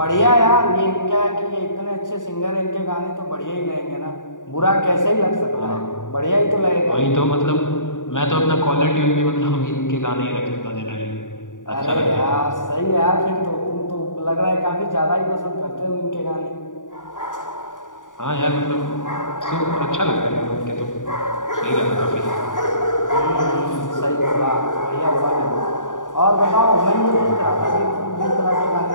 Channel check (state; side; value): late; right; 0.87 ms